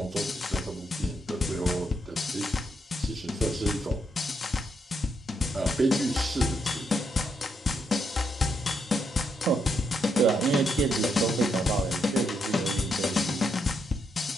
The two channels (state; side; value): normal; both; correlation 0.79